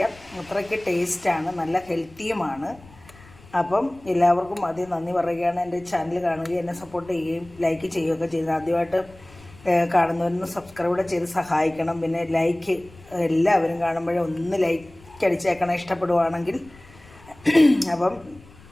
അത്രയ്ക്ക് ടേസ്റ്റാണ്, നല്ല ഹെൽത്തിയുമാണ്. അപ്പം എല്ലാവർക്കും ആദ്യം നന്ദി പറയുകയാണ്. എൻ്റെ ചാനൽ കാണുകയും എന്നെ സപ്പോർട്ട് ചെയ്യുകയും ലൈക്ക് ചെയ്യുകയൊക്കെ ചെയ്ത് ആദ്യമായിട്ട് കാണുന്നവരൊന്ന് സബ്സ്ക്രൈബ് ചെയ്ത് സഹായിക്കണം. പിന്നെ ലൈക്ക് എല്ലാവരും കാണുമ്പോഴേ ഒന്ന് ലൈക്ക് അടിച്ചേക്കണം ഇഷ്ടപ്പെടുവാണെങ്കിൽ. അപ്പം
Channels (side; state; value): left; noise; rumble, 23 dB below the sound